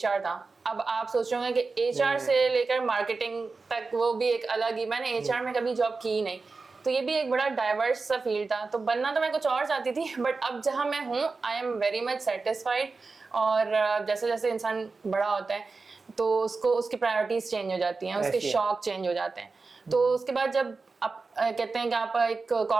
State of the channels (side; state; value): left; quieter; 4.1 dB